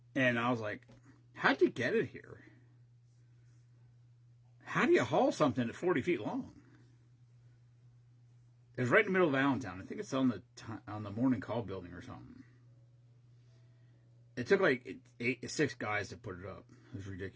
and I was like, how'd you get it here? How do you haul something at 40 feet long? It was right in the middle of Allentown. I think it's on the Morning Call building or something. It took like 6 guys to put it up. It was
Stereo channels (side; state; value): both; identical; correlation 1.00